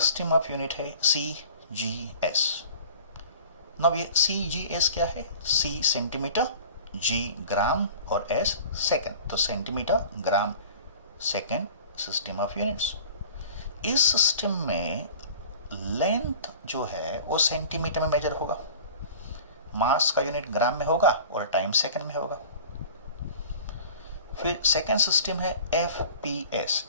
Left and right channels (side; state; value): both; inverted; correlation -0.42